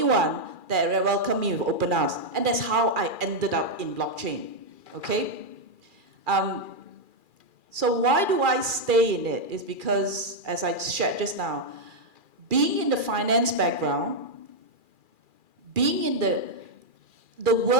one that welcomed me with open arms, and that's how I ended up in blockchain. Okay. So why do I stay in it? Is because, as I shared just now, being in the finance background, being in the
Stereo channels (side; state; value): left; late; 2.4 ms